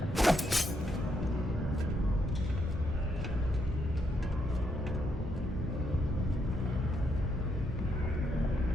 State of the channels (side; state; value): both; normal; correlation 0.77